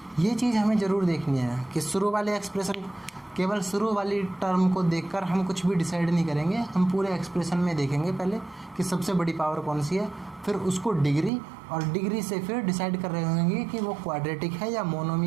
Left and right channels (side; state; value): left; drops out; at 11.3 s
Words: ये चीज़ हमें ज़रूर देखनी है कि शुरू वाले एक्सप्रेशन, केवल शुरू वाली टर्म को देखकर हम कुछ भी डिसाइड नहीं करेंगे। हम पूरे एक्सप्रेशन में देखेंगे पहले कि सबसे बड़ी पावर कौन सी है, फिर उसको डिग्री, और डिग्री से फिर डिसाइड कर रहे होंगे कि वो क्वाड्रेटिक है या